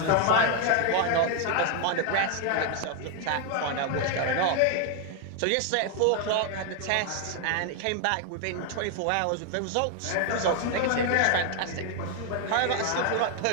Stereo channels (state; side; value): different; both; correlation 0.00